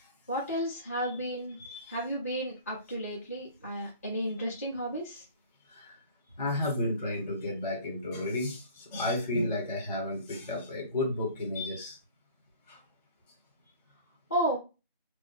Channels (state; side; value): inverted; both; correlation -0.44